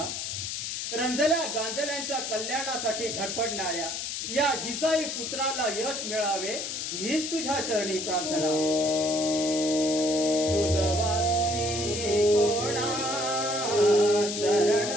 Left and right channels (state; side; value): noise; left; hiss, 4 dB below the sound